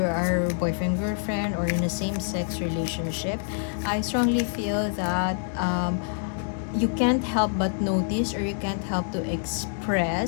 are boyfriend, girlfriend, or in a same-sex relationship, I strongly feel that you can't help but notice, or you can't help to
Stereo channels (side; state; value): right; silent; digital silence